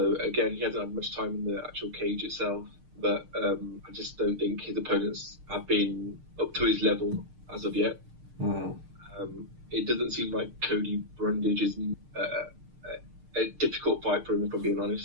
again, he hasn't had much time in the actual cage itself, but I just don't think his opponents have been up to his level as of yet. It doesn't seem like Cody Brundage is a difficult fight for him, if I'm being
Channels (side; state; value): left; late; 6.6 ms